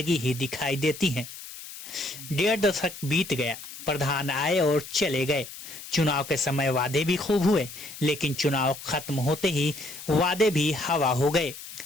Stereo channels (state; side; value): noise; left; hiss, 13 dB below the sound